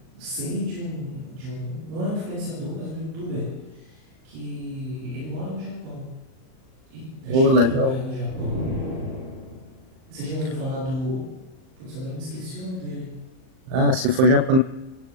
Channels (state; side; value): late; left; 38 ms